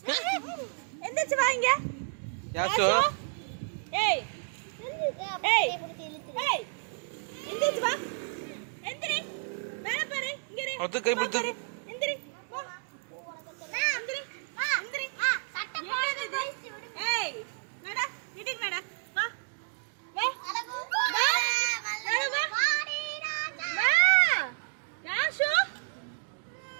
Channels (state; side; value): silent; left; digital silence